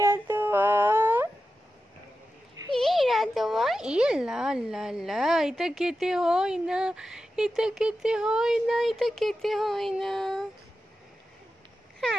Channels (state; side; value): normal; both; correlation 0.92